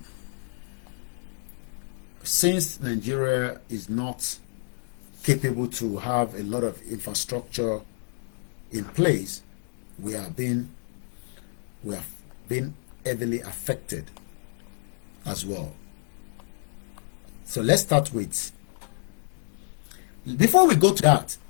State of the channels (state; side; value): silent; right; digital silence